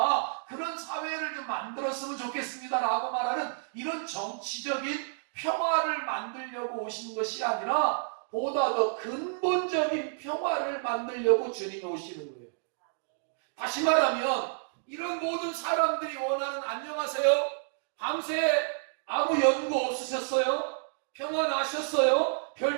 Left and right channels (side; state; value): left; silent; digital silence